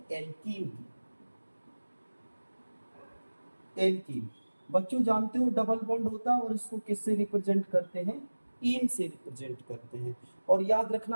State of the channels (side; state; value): both; inverted; correlation -1.00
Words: एल्कीन की। एल्कीन बच्चों जानते हो डबल बॉन्ड होता है, और इसको किससे रिप्रेजेंट करते हैं, इन से रिप्रेजेंट करते हैं। और याद